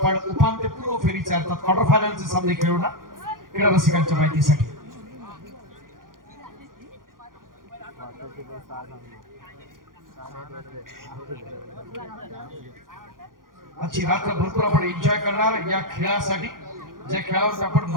उपांत्यपूर्व फेरीचे अर्थात क्वार्टर फायनलचे सामने खेळवणार क्रीडा रसिकांच्या माहितीसाठी. आजची रात्र भरपूर आपण एन्जॉय करणार या खेळासाठी. ज्या खेळावर आपण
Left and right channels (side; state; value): left; late; 0.91 ms